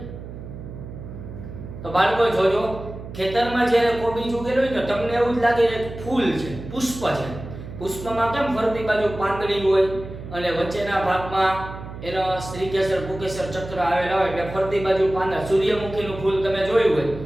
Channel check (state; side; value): noise; right; hum, 11 dB below the sound